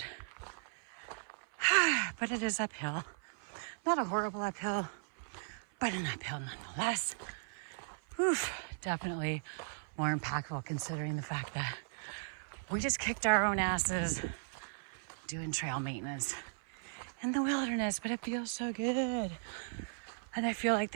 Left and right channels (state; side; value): silent; left; 53 dB below the other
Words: But it is uphill. Not a horrible uphill, but an uphill nonetheless. Oof, definitely more impactful considering the fact that we just kicked our own asses doing trail maintenance in the wilderness, but it feels so good. And I feel like